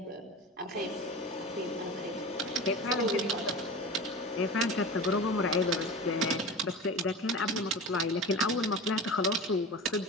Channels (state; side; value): normal; both; correlation 0.31